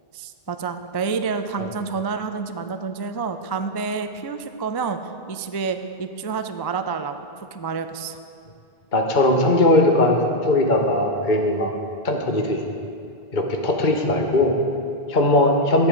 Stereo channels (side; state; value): right; late; 1.1 ms